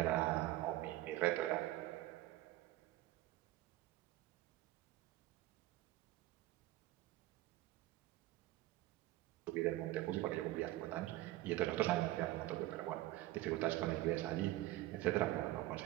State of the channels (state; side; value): quieter; left; 16.4 dB